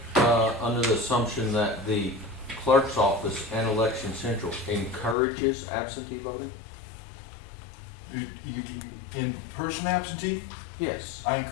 under the assumption that the clerk's office and Election Central encourages absentee voting? In-person absentee? Yes. I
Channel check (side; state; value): right; drops out; at 5.2 s